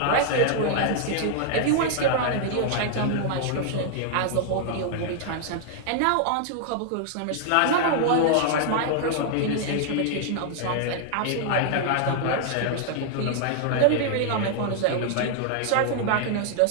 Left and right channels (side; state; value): both; different; correlation -0.01